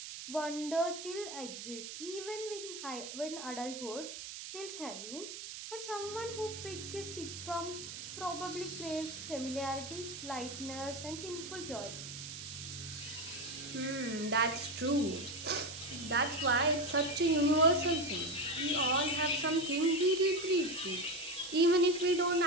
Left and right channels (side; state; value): right; noise; hiss, 9 dB below the sound